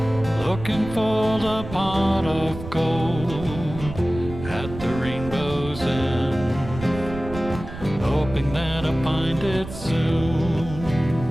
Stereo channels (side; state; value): right; noise; rumble, 11 dB below the sound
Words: looking for the pot of gold at the rainbow's end, hoping that I find it soon